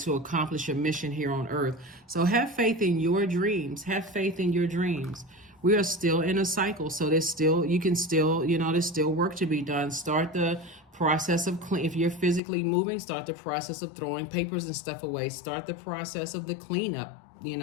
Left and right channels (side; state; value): right; drops out; at 12.4 s